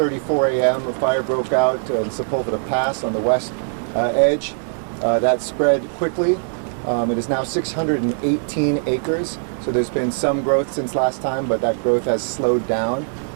a.m. a fire broke out in Sepulveda Pass on the west edge. That spread quickly. It is now 618 acres, so there's been some growth since last time, but that growth has slowed down,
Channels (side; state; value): left; silent; 61 dB below the other